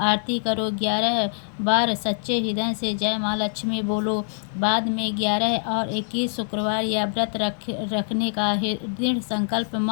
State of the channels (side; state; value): right; silent; 62 dB below the other